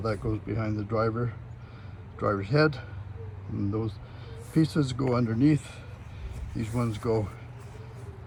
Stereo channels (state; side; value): identical; both; correlation 1.00